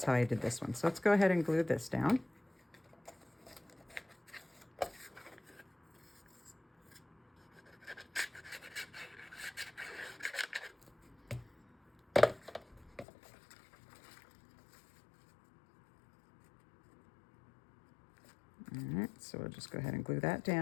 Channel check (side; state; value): right; drops out; at 13.1 s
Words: how I did this one. So let's go ahead and glue this down. All right, so we'll just go ahead and glue that